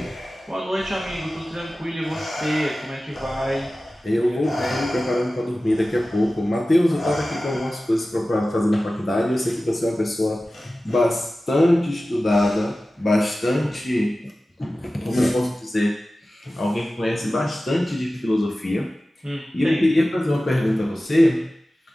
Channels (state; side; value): normal; both; correlation 0.96